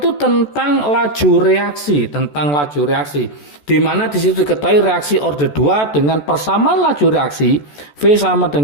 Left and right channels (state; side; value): late; right; 14 ms